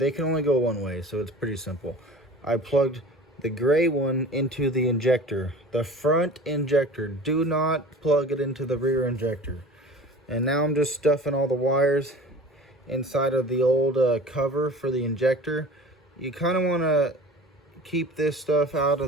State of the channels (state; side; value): normal; both; correlation 0.40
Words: can only go one way, so it's pretty simple. I plugged the gray one into the injector, the front injector. Do not plug it into the rear injector. And now I'm just stuffing all the wires inside of the old cover for the injector. You kind of want to keep this stuff out